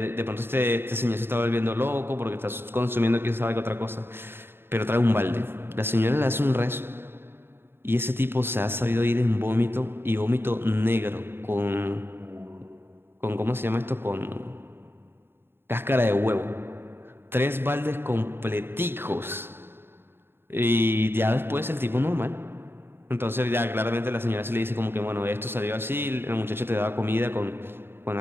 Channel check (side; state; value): left; late; 0.11 ms